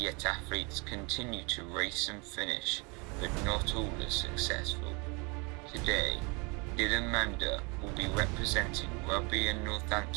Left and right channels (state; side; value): quieter; left; 30.2 dB